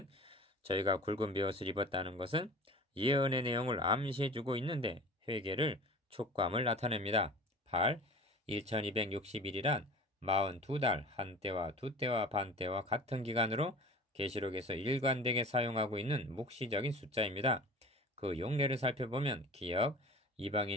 저희가 굵은 베옷을 입었다는 것은 예언의 내용을 암시해주고 있는데 회개를 촉감을 나타냅니다. 8. 1260일이란 42달 한때와 두때와 반때와 같은 기간으로 계시록에서 일관되게 사용하고 있는 묵시적인 숫자입니다. 그 용례를 살펴보면 기억,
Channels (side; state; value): both; normal; correlation 0.39